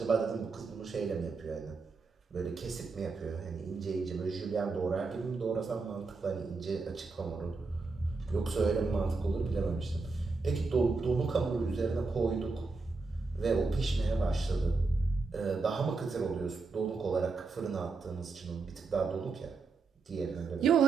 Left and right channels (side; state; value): left; quieter; 4.1 dB